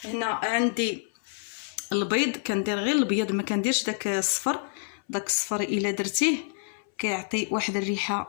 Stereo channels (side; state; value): right; silent; 59 dB below the other